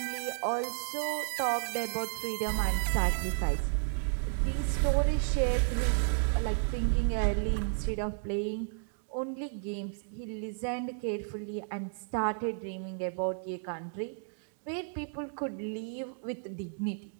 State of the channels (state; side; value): silent; left; digital silence